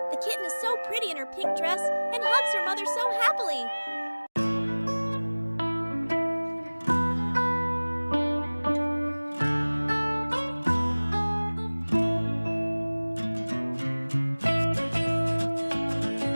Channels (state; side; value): inverted; both; correlation -1.00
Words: The kitten is so pretty in her pink dress and hugs her mother so happily.